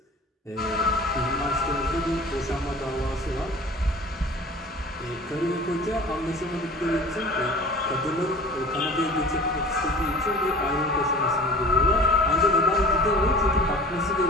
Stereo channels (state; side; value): normal; both; correlation 0.42